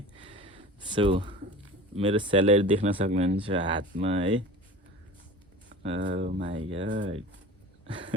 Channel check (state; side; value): normal; both; correlation 0.37